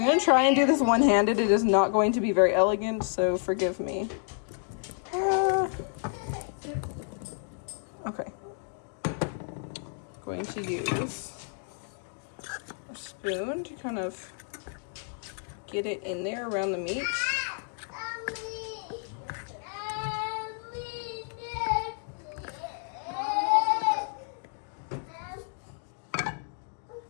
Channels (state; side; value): silent; right; 58 dB below the other